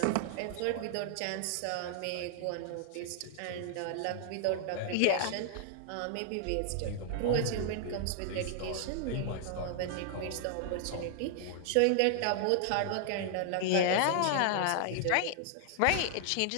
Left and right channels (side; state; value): both; different; correlation 0.00